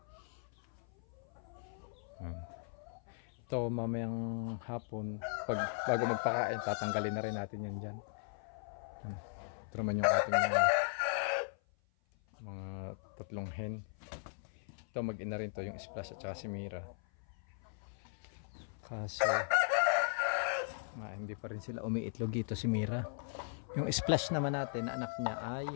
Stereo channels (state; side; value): silent; right; 52 dB below the other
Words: Ito mamayang hapon, bago magpakain, tatanggalin na rin natin yan dyan. Ito naman yung ating mga tatlong hen. Ito mag-ina rin to, yung Splash at saka si Mira. Kaso hindi pa rin sila umiitlog dito si Mira. Yung Splash naman natin na anak niya ay